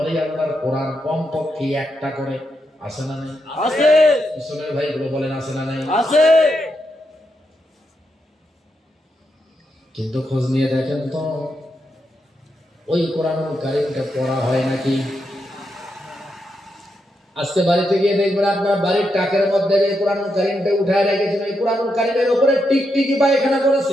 আল্লাহর কোরআন কমপক্ষে একটা করে আছে না নাই? আছে। মুসলমান ভাইগুলো বলেন আছে না নাই? আছে। কিন্তু খোঁজ নিয়ে দেখেন তো ওই কোরআনুল কারীমটা পড়া হয় নাকি? আজকে বাড়িতে গিয়ে দেখবেন আপনার বাড়ির টাকের মধ্যে যে কোরআনুল কারীমটা উঠায় রেখেছেন, ওই কোরআনুল কারীমের উপরে টিকটিকি পায়খানা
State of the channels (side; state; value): both; normal; correlation 0.83